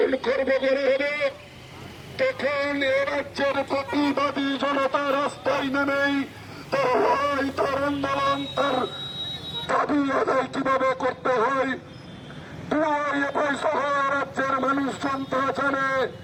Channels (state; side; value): identical; both; correlation 1.00